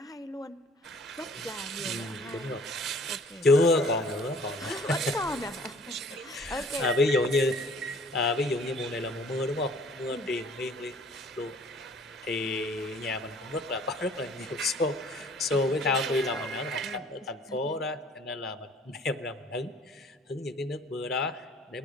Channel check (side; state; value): both; normal; correlation 0.53